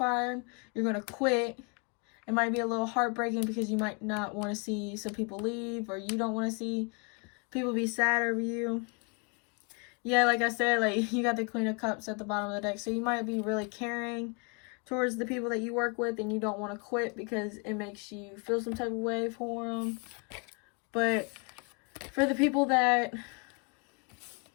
you're going to quit. It might be a little heartbreaking because you might not want to see some people leave, or you don't want to see people be sad over you. Yeah, like I said, like you got the Queen of Cups at the bottom of the deck. So you might be really caring towards the people that you work with, and you don't want to quit because it makes you feel some type of way for them. But for the people that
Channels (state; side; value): quieter; right; 35.1 dB